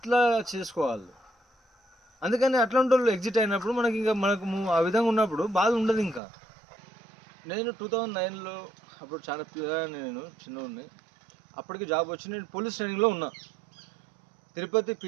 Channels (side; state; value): left; drops out; at 6.2 s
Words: చేసుకోవాలి. అందుకని అట్లాంటి వాళ్ళు ఎగ్జిట్ అయినప్పుడు మనకి ఇంకా ఆ విధంగా ఉన్నప్పుడు బాధ ఉండదు ఇంకా. నేను 2009లో అప్పుడు చాలా పిల్లగాడిని, నేను చిన్నోడిని. అప్పటికి జాబ్ వచ్చి నేను పోలీస్ ట్రైనింగ్లో ఉన్నా. తిరుపతి